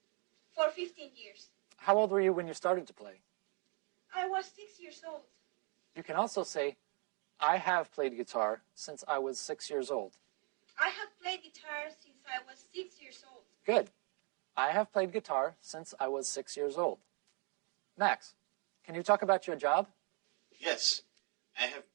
for 15 years. How old were you when you started to play? I was 6 years old. You can also say, I have played guitar since I was 6 years old. I have played guitar since I was 6 years old. Good. I have played guitar since I was 6 years old. Max, can you talk about your job? Yes, I have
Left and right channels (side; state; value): left; quieter; 35.0 dB